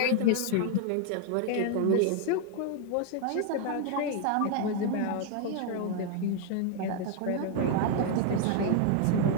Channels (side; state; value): both; different; correlation 0.00